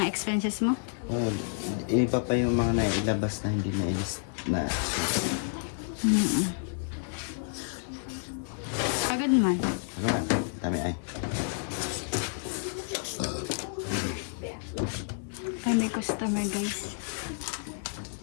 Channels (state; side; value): silent; right; digital silence